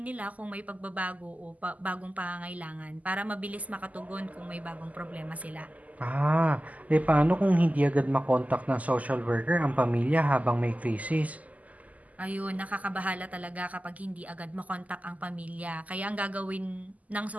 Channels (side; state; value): left; late; 0.076 ms